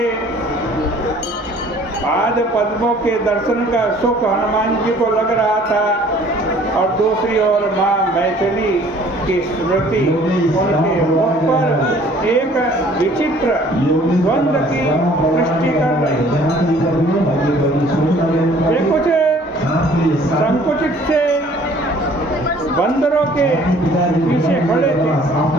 पाद पद्मों के दर्शन का सुख हनुमान जी को लग रहा था, और दूसरी ओर माँ मैथिली की स्मृति उनके मुख पर एक विचित्र द्वंद्व की सृष्टि कर रही। वे कुछ संकुचित से बंदरों के पीछे खड़े थे।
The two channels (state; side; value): normal; both; correlation 0.55